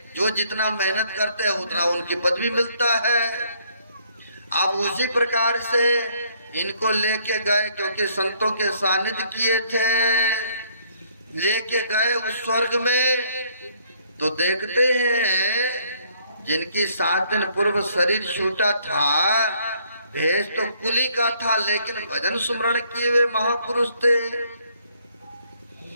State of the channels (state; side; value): inverted; both; correlation -0.65